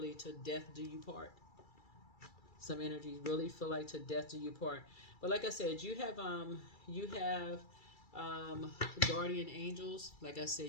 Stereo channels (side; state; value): right; late; 2.3 ms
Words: to death do you part. Some energies really feel like to death do you part. But like I said, you have guardian angels. Like I